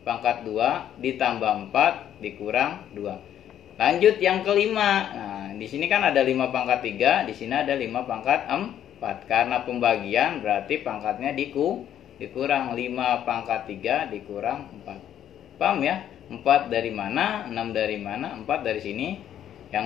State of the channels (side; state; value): right; quieter; 10.6 dB